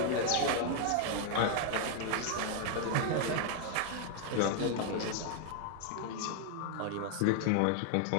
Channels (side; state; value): both; different; correlation 0.00